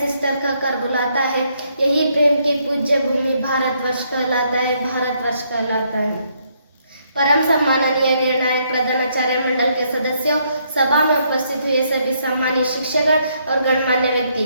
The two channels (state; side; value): inverted; both; correlation -0.72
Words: सिस्टर का कर बुलाता है। यही प्रेम की पूज्य भूमि भारतवर्ष कहलाता है, भारतवर्ष कहलाता है। परम सम्माननीय निर्णायक प्रधानाचार्य मंडल के सदस्यों, सभा में उपस्थित हुए सभी सम्मानित शिक्षकगण और गणमान्य